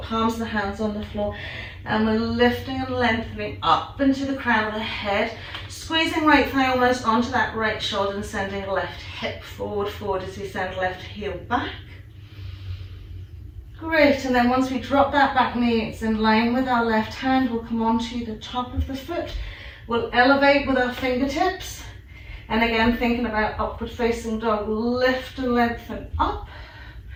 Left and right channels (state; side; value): identical; both; correlation 1.00